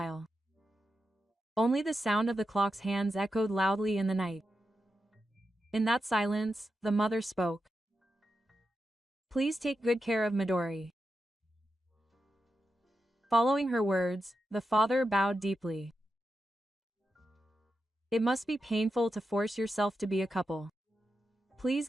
Only the sound of the clock's hands echoed loudly in the night. In that silence, the mother spoke. Please take good care of Midori. Following her words, the father bowed deeply. It must be painful to force yourself to be a couple. Please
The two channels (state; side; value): normal; both; correlation 0.88